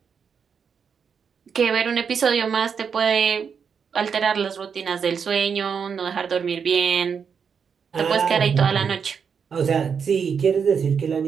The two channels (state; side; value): quieter; left; 6.5 dB